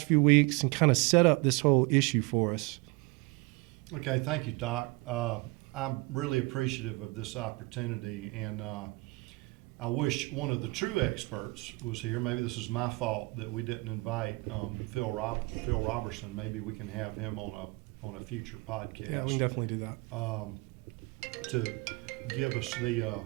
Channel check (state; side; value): quieter; left; 25.1 dB